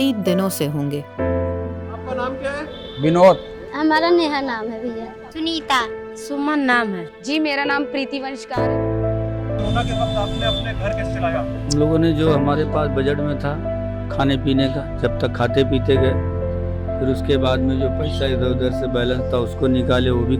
दिनों से होंगे। आपका नाम क्या है? विनोद। हमारा नेहा नाम है भैया। सुनीता। सुमन नाम है जी। मेरा नाम प्रीति वंशकार है। कोरोना के वक्त आपने अपने घर कैसे चलाया? हम लोगों ने जो हमारे पास बजट में था खाने पीने का, जब तक खाते पीते गए, फिर उसके बाद में जो पैसा इधर उधर से बैलेंस था उसको निकाले, वो भी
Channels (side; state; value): both; identical; correlation 1.00